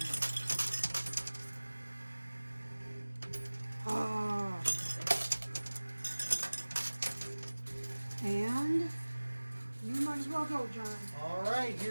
Ah. And you might as well go, John. All right,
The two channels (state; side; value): inverted; both; correlation -1.00